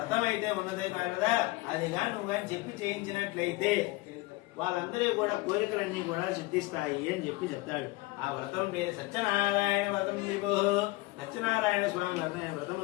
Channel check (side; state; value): right; quieter; 21.4 dB